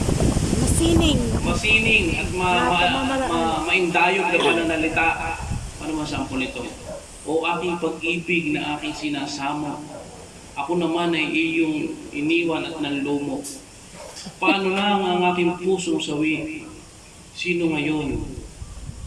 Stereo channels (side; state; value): both; identical; correlation 1.00